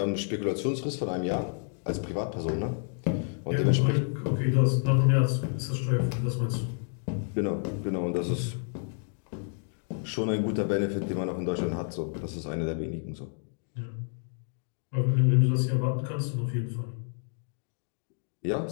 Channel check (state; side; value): silent; right; 58 dB below the other